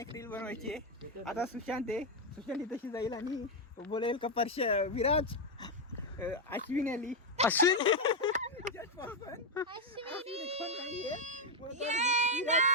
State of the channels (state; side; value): normal; both; correlation 0.03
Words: रील बनवायची आहे. आता सुशांत तशी जाईल आणि बोलेल का विराज अश्विन आली. अश्विन